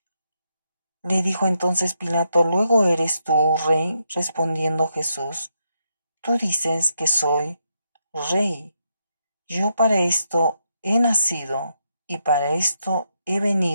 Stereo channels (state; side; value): inverted; both; correlation -0.80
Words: Le dijo entonces Pilato, ¿luego eres tú rey? Respondiendo Jesús, tú dices que soy rey. Yo para esto he nacido y para esto he